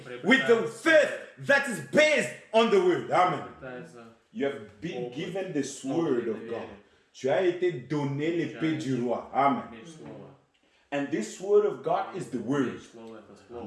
with the faith that is based on the word. Amen. You have been given this word of God. Tu as été donné l'épée du roi. Amen. And this word of God is the word.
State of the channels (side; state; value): both; identical; correlation 1.00